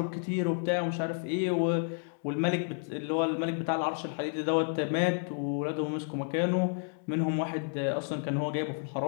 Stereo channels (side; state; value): right; silent; 57 dB below the other